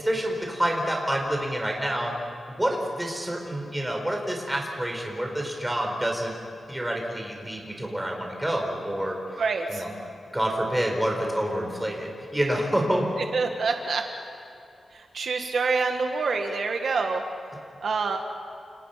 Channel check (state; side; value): normal; both; correlation 0.93